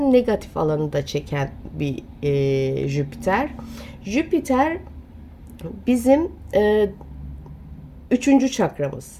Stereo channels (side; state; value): both; identical; correlation 1.00